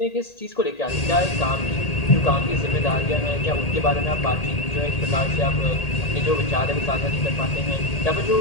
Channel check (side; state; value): right; late; 1.8 ms